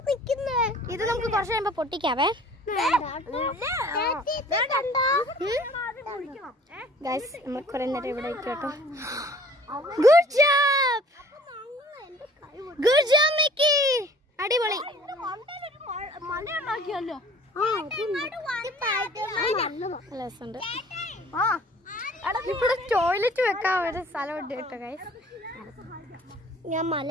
നിക്കുന്നേ? ഇത് നമുക്ക് കുറച്ച് കഴിയുമ്പോ പൊട്ടിക്കാവേ. ഗൈസ് നമ്മൾ കുറെ നേരം ഇവിടെ കേട്ടോ. Good job, good job Mickey, അടിപൊളി. മലയുണ്ടാക്കിയല്ലോ. ഇവിടെ ടോയ്ലറ്റ് വെക്കാൻ ഒരു സ്ഥലമുണ്ട് കേട്ടോ ഗൈസ്. ഞാൻ മല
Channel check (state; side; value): normal; both; correlation 0.51